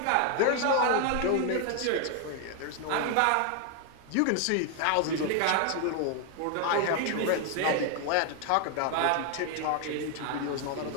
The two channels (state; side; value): different; both; correlation 0.00